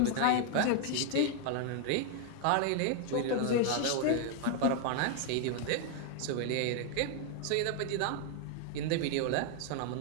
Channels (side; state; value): both; different; correlation 0.00